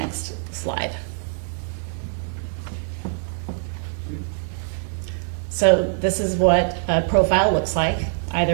slide. So this is what a profile looks like,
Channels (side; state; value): left; silent; 63 dB below the other